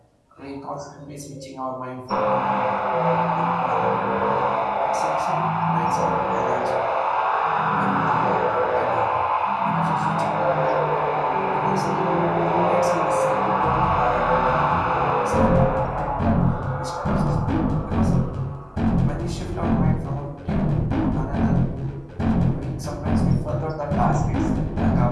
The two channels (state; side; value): identical; both; correlation 1.00